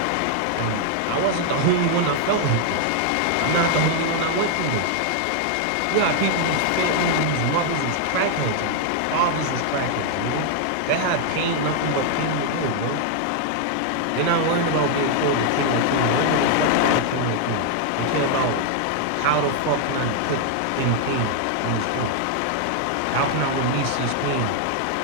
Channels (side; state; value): both; different; correlation 0.00